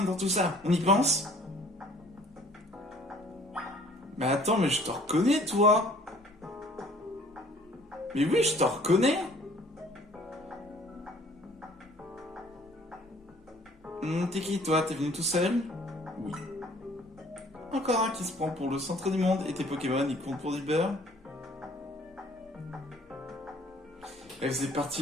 dans tout ça, on y pense? Mais attends, mais je te reconnais, toi. Mais oui, je te reconnais. T'es qui, toi? T'es venu tout seul? Oui. Encore un qui se prend pour le centre du monde, et tes Pokémon, ils comptent pour du beurre? Elle faisait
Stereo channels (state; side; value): normal; both; correlation 0.55